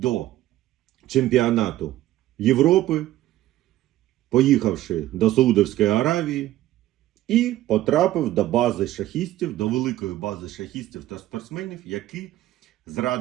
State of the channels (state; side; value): quieter; left; 14.6 dB